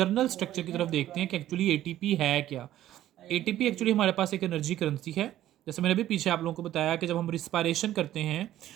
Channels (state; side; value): quieter; left; 13.1 dB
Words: स्ट्रक्चर की तरफ देखते हैं कि एक्चुअली एटीपी है क्या। एटीपी एक्चुअली हमारे पास एक एनर्जी करेंसी है। जैसे मैंने भी पीछे आप लोगों को बताया कि जब हम रिस्पायरेशन करते हैं